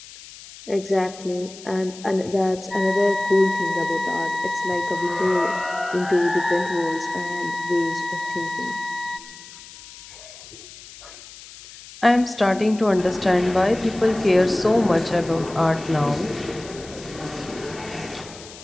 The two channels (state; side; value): noise; left; hiss, 17 dB below the sound